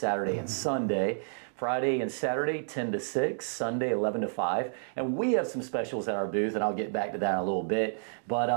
and Sunday. Friday and Saturday, 10 to 6, Sunday, 11 to 5. And we have some specials at our booth, and I'll get back to that in a little bit.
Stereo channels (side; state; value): left; silent; digital silence